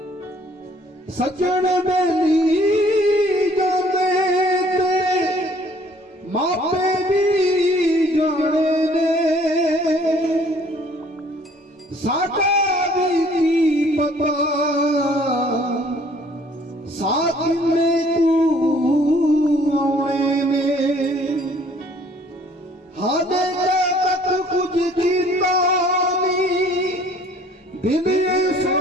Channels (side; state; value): both; normal; correlation 0.58